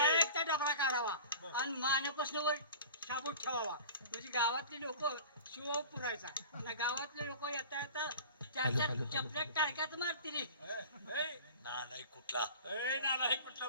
डबरा काढावा आणि मानेपासून वर शाबूत ठेवावा म्हणजे गावातले लोक शिव पुरायचा आणि गावातले लोक येता येता त्याच्या चपल्यात टाळक्यात मारतील नाही कुठला कुठलं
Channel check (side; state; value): both; inverted; correlation -0.39